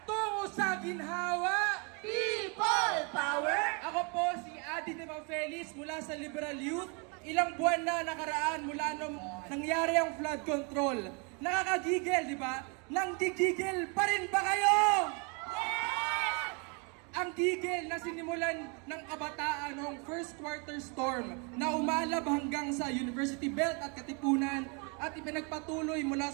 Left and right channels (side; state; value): left; quieter; 34.1 dB